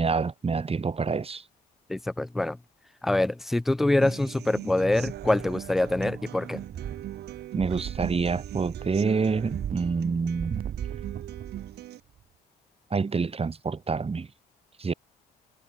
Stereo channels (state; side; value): normal; both; correlation 0.84